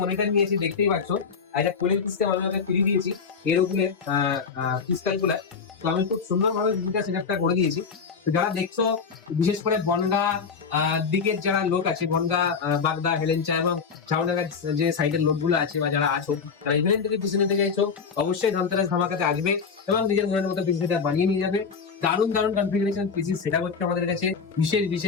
মনিটর নিয়েছি, দেখতেই পাচ্ছ। আর একটা কুলিং সিস্টেম আমি ওকে ফ্রি দিয়েছি এর উপরে ক্রিস্টাল গুলা। তো আমি খুব সুন্দরভাবে দুটা সেটআপটা করে দিয়েছি। তো যারা দেখছো, বিশেষ করে বনগাঁ দিকের যারা লোক আছে, বনগাঁ, বাগদা, হেলেঞ্চা এবং ঝাউডাঙ্গার যে সাইডের লোকগুলো আছে বা যারা আছো, যারা ইভেন্ট থেকে পিছনে থেকে চাইছো, অবশ্যই ধনতেরাস ধামাকাতে আসবে এবং নিজের মনের মতো পিসি সেটআপ বানিয়ে নিয়ে যাবে। দারুণ দারুণ কনফিগারেশন পিসি সেটআপ হচ্ছে আমাদের কাছে।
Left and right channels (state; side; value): quieter; right; 5.6 dB